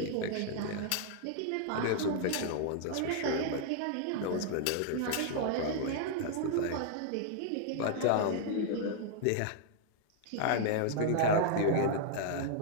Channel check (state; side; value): different; both; correlation -0.01